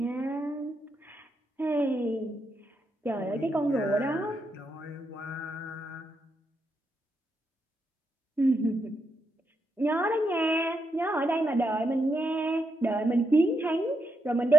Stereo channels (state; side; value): normal; both; correlation 0.81